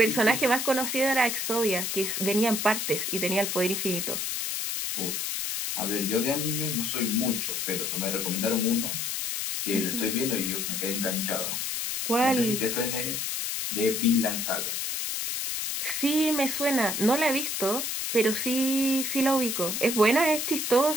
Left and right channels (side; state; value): left; noise; hiss, 2 dB below the sound